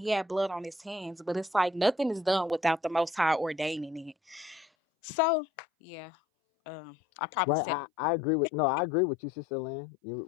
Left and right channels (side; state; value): right; drops out; at 4.7 s